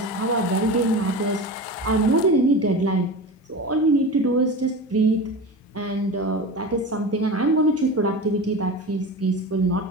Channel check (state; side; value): normal; both; correlation 0.28